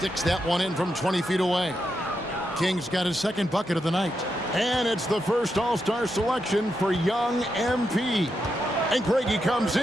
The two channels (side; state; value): both; normal; correlation 0.84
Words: that one in from 20 feet away. King's got his second bucket of the night. And it's the first All-Star selection for young MP. And Craigie comes